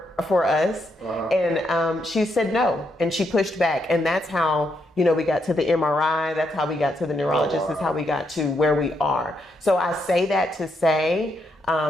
us. And she said no, and she pushed back. And that's how, we got to the MRI. That's how we got to the neurologist. That's how we got to where we are. So I say that to say,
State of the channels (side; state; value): both; normal; correlation 0.79